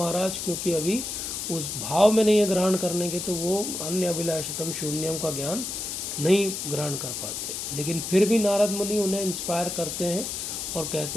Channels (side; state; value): left; noise; hiss, 5 dB below the sound